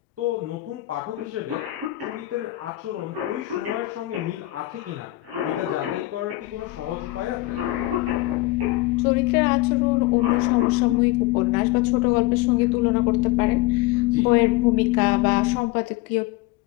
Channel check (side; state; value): right; quieter; 18.4 dB